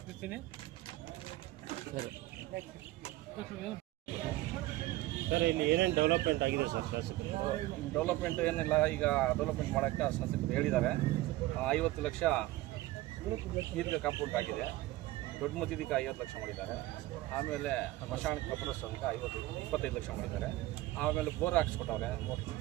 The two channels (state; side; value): quieter; left; 17.4 dB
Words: ಸರ್, ಇಲ್ಲಿ ಏನೇನು ಡೆವಲಪ್ಮೆಂಟ್ ಆಗಿದೆ ಸರ್ ಶಾಸಕರು? ಡೆವಲಪ್ಮೆಂಟ್ ಏನಿಲ್ಲ, ಈಗ ಡೆವಲಪ್ಮೆಂಟ್ ಮಾಡೋಕ್ಕೆ ಶಾಸಕರು ಹೇಳಿದ್ದಾರೆ. 50 ಲಕ್ಷ ಈದ್ಗಾ ಕಾಂಪೌಂಡ್ ಆಗಿದೆ. ದೊಡ್ಡ ಮಸೀದಿಗೆ 50 ಲಕ್ಷ ಮಾಡಿದ್ದಾರೆ. ಆಮೇಲೆ ಮಶಾಣ ಕಬ್ರಸ್ತಾನಕ್ಕೆ 25 ಲಕ್ಷ ಮಾಡಿದ್ದಾರೆ. ಆಮೇಲೆ ಬೋರ್ ಹಾಕ್ಸ್ಕೊಟ್ಟವ್ರೆ, ಮೋಟ್ರ್